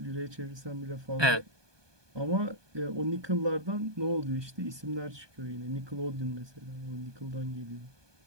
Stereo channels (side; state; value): left; late; 1.2 ms